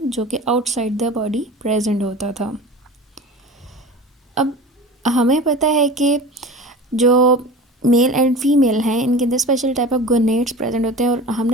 जो कि आउटसाइड द बॉडी प्रेजेंट होता था. अब हमें पता है कि जो मेल एंड फीमेल हैं इनके अंदर special type of gonads present होते हैं और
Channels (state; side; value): normal; both; correlation 0.35